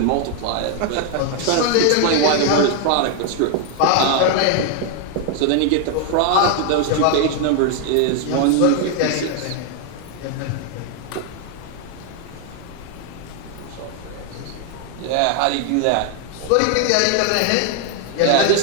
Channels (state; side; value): different; both; correlation 0.00